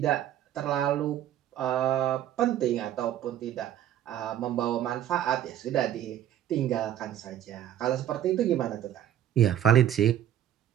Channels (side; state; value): left; quieter; 11.2 dB